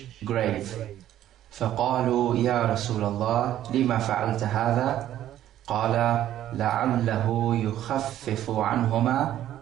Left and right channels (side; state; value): left; quieter; 12.2 dB